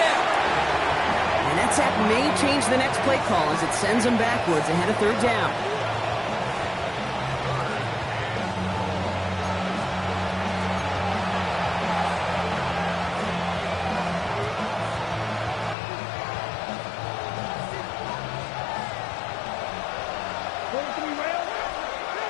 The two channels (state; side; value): drops out; right; at 15.8 s